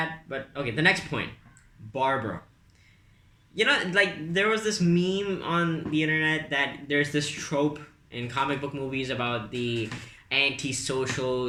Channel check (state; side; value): identical; both; correlation 1.00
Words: but okay, the next point, Barbara. You know, like, there was this meme on the internet that there's this trope in comic book movies about the antisocial,